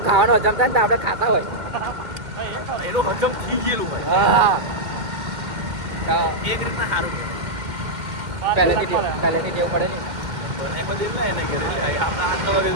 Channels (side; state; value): left; late; 2.1 ms